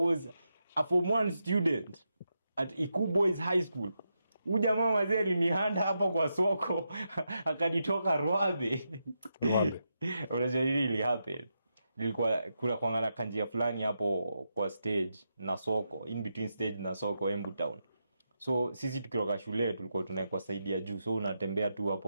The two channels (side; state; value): both; inverted; correlation -0.85